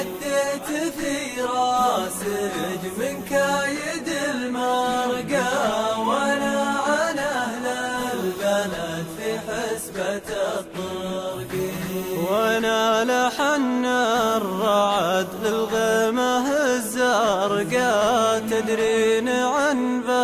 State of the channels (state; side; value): identical; both; correlation 1.00